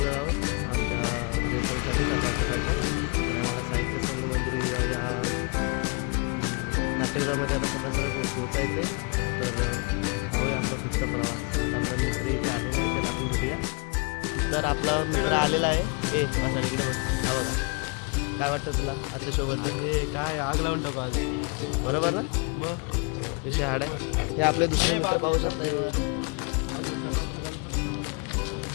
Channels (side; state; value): right; quieter; 32.0 dB